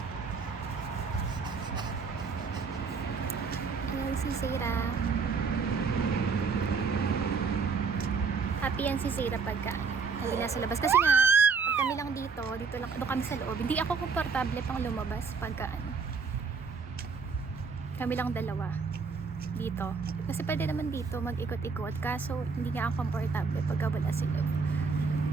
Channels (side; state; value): left; quieter; 5.2 dB